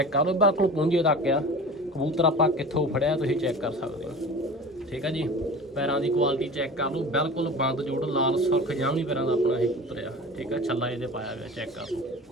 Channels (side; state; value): both; normal; correlation 0.37